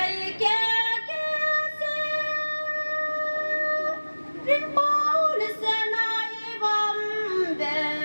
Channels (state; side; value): inverted; both; correlation -1.00